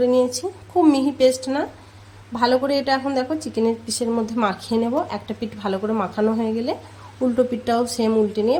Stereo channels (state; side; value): identical; both; correlation 1.00